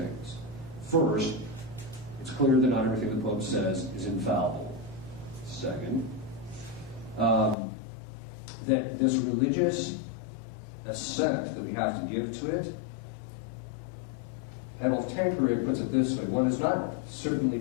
First, it's clear that not everything the Pope says is infallible. Second, that this religious assent that we have to give to it, Adolf Tanqueray puts it this way: one is not certainly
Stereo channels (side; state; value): right; drops out; at 7.6 s